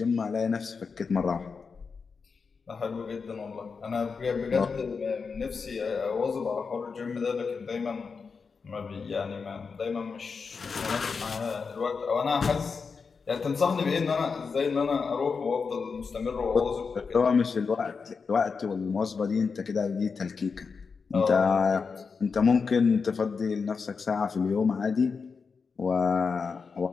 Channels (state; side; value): quieter; right; 5.2 dB